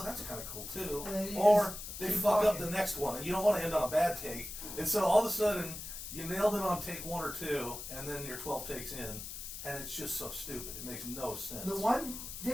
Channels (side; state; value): left; noise; hiss, 9 dB below the sound